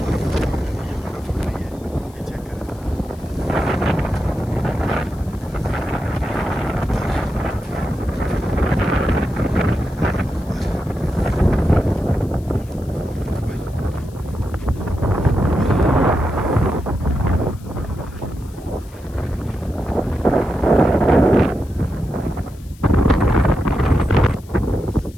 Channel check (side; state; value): left; noise; hiss, 26 dB below the sound